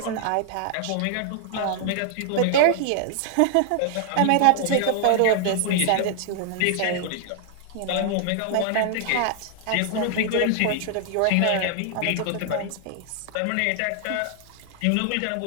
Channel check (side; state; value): both; different; correlation 0.00